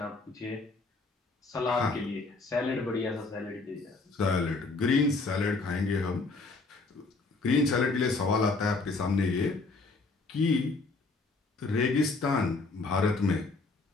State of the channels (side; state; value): right; quieter; 3.7 dB